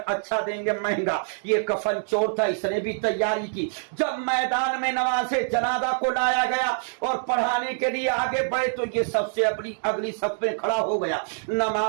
अच्छा देंगे महंगा। ये कफन चोर था, इसने भी तैयारी की। जब मैदान में नमाज़े जनाजा को लाया गया और पढ़ाने के लिए आगे बढ़े तो ये सबसे अगली सफ में खड़ा हो गया।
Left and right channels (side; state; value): left; silent; digital silence